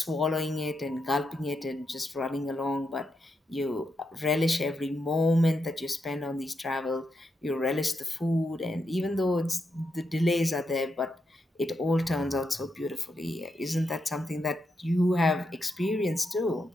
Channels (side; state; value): both; normal; correlation 0.83